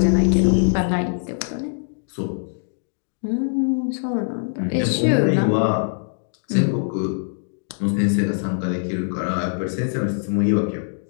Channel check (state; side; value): silent; right; digital silence